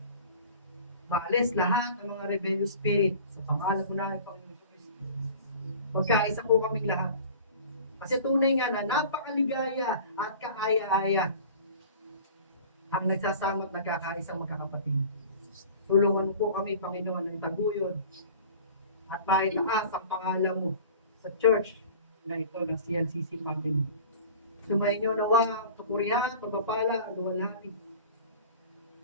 Maalis lahat ng mga rebellious spirit sa pangalan mo na ng Panginoon Kristo. Magkaisa po kaming lahat. Kasi tunay nga na napakaligaya at kaaya-aya ang nagsasama at nagkakaisang magkakapatid. Tulungan po kami, Panginoon, ng taguyod at maitaas ang pangalan mo sa church na ito ng CNCC Family. Sumayin niyo nawa, papurihan, pagpapala, luwalhati.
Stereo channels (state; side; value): inverted; both; correlation -0.42